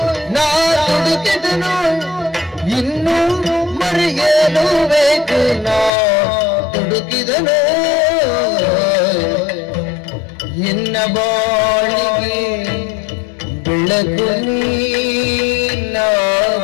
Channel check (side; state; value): right; drops out; at 5.9 s